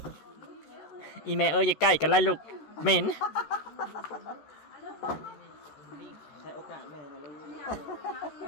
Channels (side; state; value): right; late; 13 ms